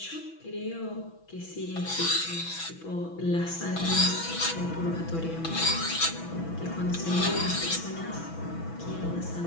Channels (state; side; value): late; right; 6.1 ms